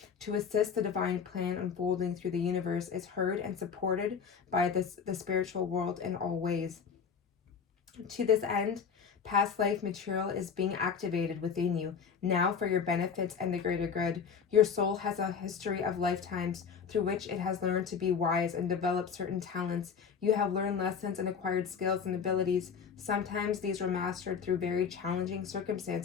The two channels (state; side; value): quieter; right; 6.4 dB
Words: to assist the divine plan unfolding through the universe is heard and supported by the spiritual world in all ways. To this end, past life material is being activated within you now for your benefits and the greater good. Your soul has a history of lifetimes through which it has learned to be wise and developed certain talents. You have learned lessons and acquired skills and abilities. Sometimes these were mastered through very challenging